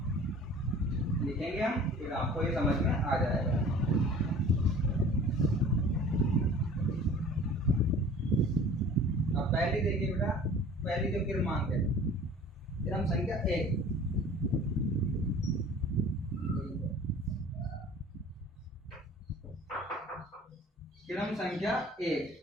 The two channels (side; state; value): both; normal; correlation 0.45